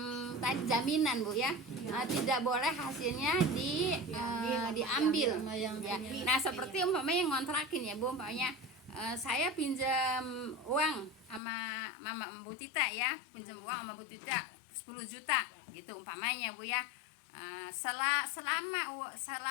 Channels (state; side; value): drops out; right; at 11.4 s